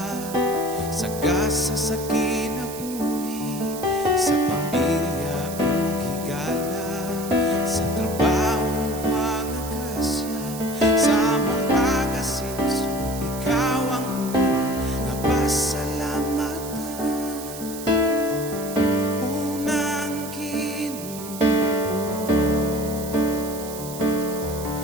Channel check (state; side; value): noise; right; hiss, 12 dB below the sound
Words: sa gasa sa kinabuhi, sa pamilya ug higala, sa trabaho mga grasya, sa among pag-asenso, ikaw ang una nga pasalamatan. Unang Ginoo